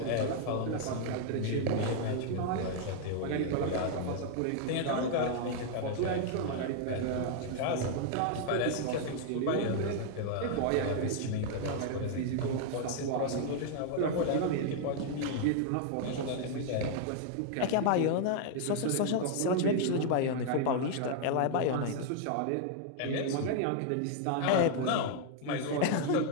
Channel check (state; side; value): different; both; correlation 0.00